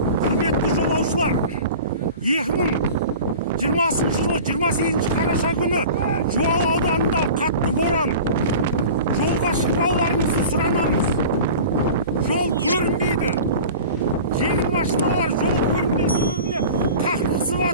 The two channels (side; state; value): both; inverted; correlation -0.38